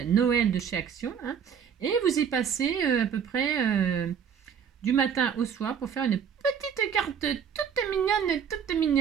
Noël de chez Action, hein, et vous y passez à peu près... du matin au soir pour faire une petite carte toute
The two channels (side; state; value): left; quieter; 7.7 dB